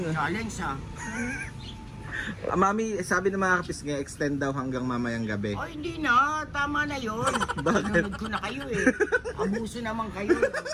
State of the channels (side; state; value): both; identical; correlation 1.00